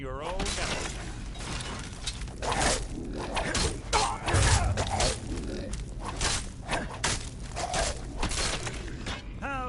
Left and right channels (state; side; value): identical; both; correlation 1.00